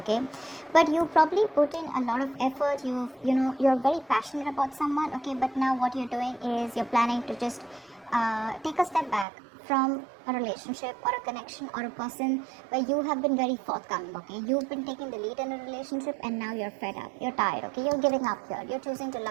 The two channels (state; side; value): drops out; left; at 9.2 s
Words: But you probably put in a lot of effort, you're very passionate about someone, okay? But now what you're doing is you're planning to just take a step back from a relationship or a connection or a person where you have been very forthcoming, okay? You've been taking the lead in a relationship, and now you're fed up, you're tired, okay? You're giving up here, you're choosing to